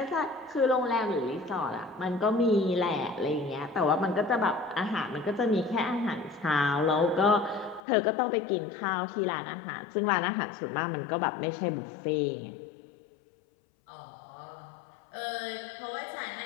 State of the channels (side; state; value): right; drops out; at 7.8 s